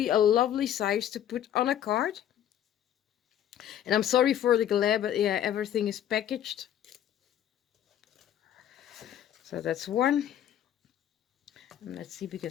a lovely size to put on a card. And I'm sorry for the glare, but yeah, everything is packaged. So that's one. And let's see,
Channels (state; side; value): quieter; right; 10.8 dB